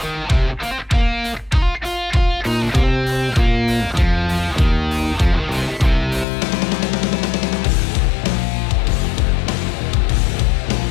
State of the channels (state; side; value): drops out; right; at 6.2 s